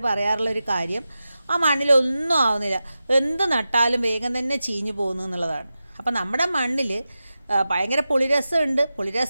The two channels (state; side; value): inverted; both; correlation -0.93